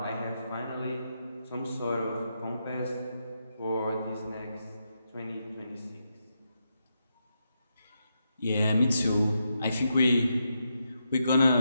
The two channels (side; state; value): both; inverted; correlation -0.83